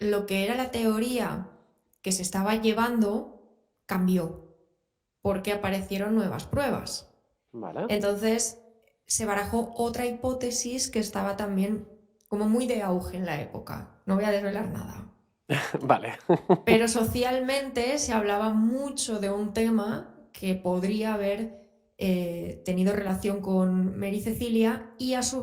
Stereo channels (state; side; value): identical; both; correlation 1.00